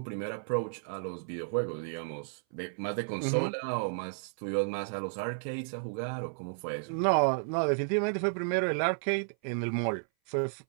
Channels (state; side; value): silent; left; 56 dB below the other